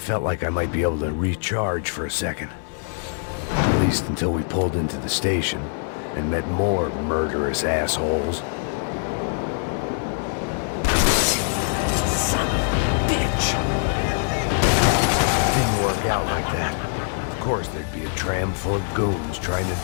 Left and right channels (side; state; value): right; silent; digital silence